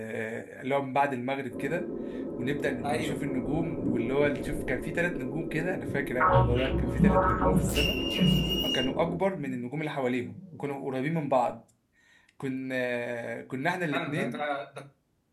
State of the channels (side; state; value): both; identical; correlation 1.00